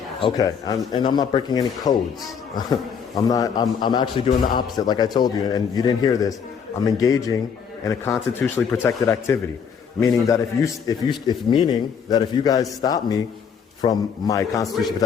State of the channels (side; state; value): right; quieter; 6.9 dB